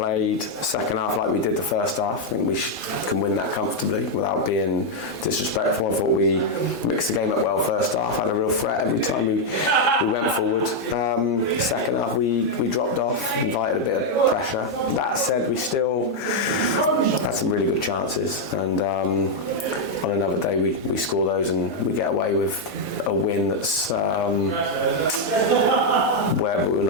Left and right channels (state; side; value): normal; both; correlation 0.00